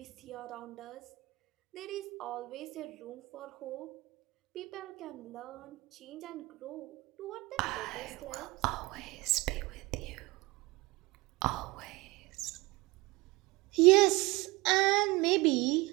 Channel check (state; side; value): quieter; left; 22.2 dB